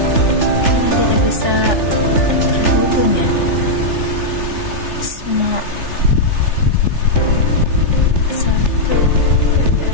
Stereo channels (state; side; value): late; right; 3.4 ms